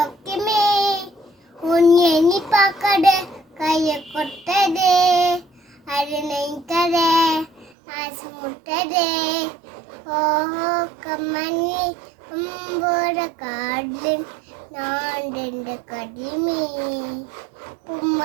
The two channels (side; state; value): left; drops out; at 7.8 s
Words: உன் எண்ணி பார்க்கட கைய கொட்டதே அது நெய்ததே ஆசு முட்டதே ஓஹோ கம்மணி அம்போட கார்டன் நான் ரெண்டு கடியமே